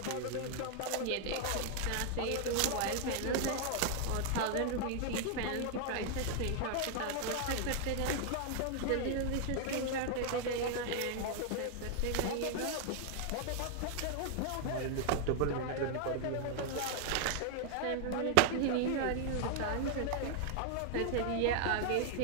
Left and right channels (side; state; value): both; different; correlation 0.00